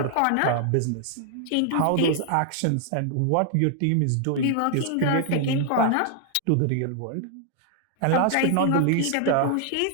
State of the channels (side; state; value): both; different; correlation 0.00